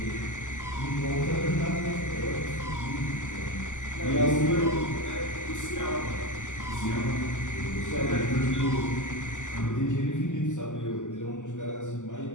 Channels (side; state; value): right; late; 0.86 ms